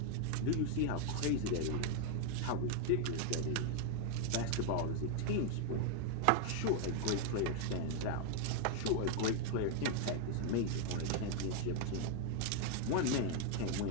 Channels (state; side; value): different; both; correlation 0.00